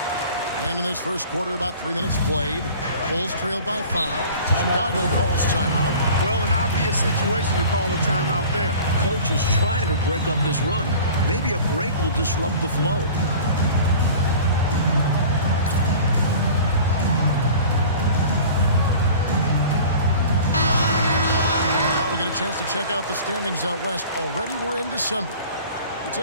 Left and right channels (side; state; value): both; inverted; correlation -0.42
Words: And in this first quarter, about 3 minutes played. Bulls trailed by 5. Chicago calls timeout. Well, an obvious situation to call a timeout there. Coach is trying to break up this run. Maybe a break will disrupt the flow. Now we get a chance to check out the standings out west. Already we're in December. We